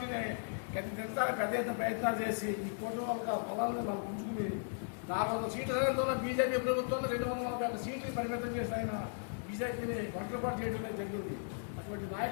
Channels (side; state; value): right; silent; digital silence